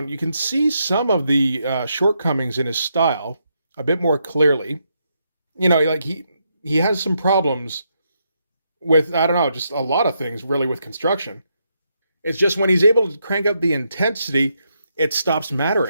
you can see some of the shortcomings in his style a bit more clearly. You know, like he has some problems with, I don't know, just a lot of things really with construction. It's just when he's able to crank up the intensity, it stops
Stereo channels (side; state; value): both; inverted; correlation -0.79